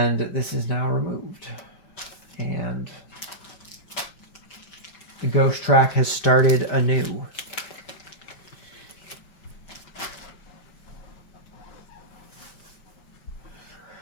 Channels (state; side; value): late; right; 5.1 ms